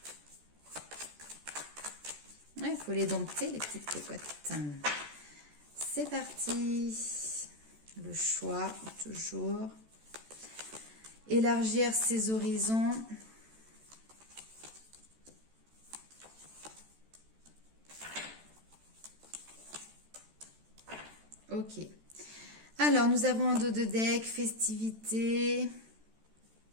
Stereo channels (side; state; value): left; late; 14 ms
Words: Il faut les dompter, les petites cocottes. C'est parti. Le choix, toujours. Élargir ses horizons. Ok. Alors, nous avons un dos de deck, festivité.